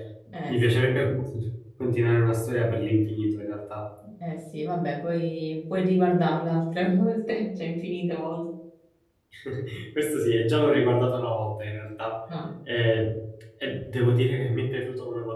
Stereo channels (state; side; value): identical; both; correlation 1.00